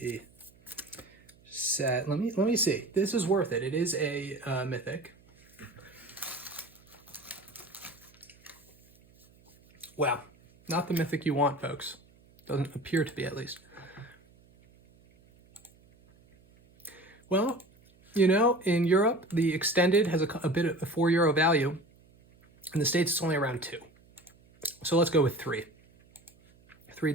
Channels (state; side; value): noise; right; hum, 29 dB below the sound